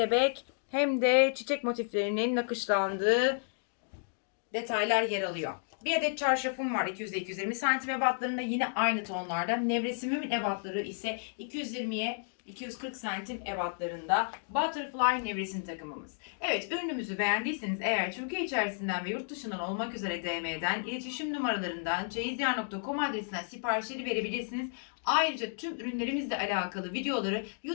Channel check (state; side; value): silent; right; digital silence